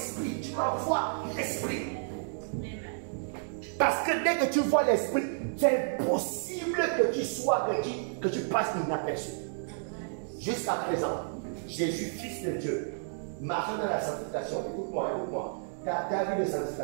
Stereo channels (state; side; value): silent; left; digital silence